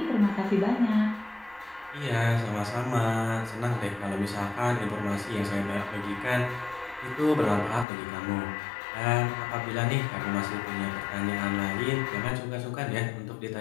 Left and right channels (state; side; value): drops out; right; at 7.9 s